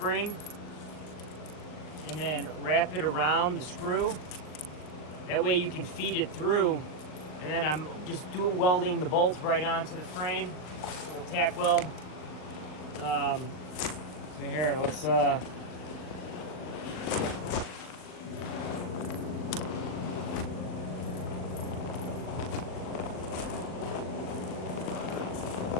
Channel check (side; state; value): right; late; 39 ms